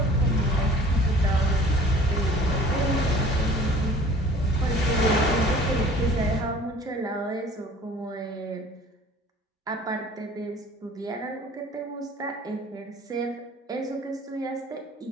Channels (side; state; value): both; normal; correlation 0.48